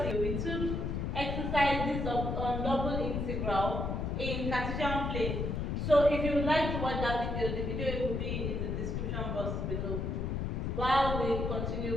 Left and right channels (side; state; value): left; noise; rumble, 1 dB below the sound